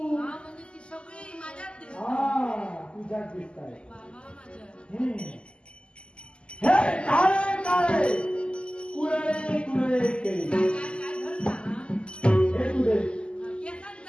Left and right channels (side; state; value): right; late; 0.052 ms